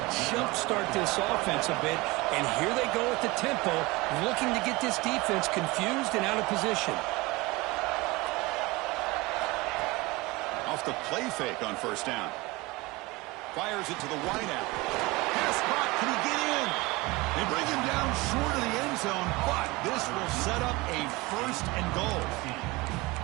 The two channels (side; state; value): left; quieter; 22.4 dB